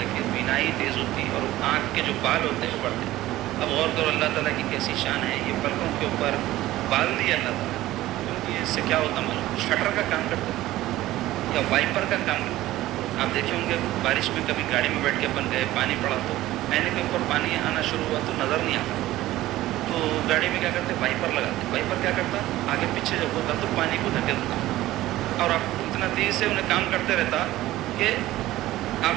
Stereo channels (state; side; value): quieter; left; 15.9 dB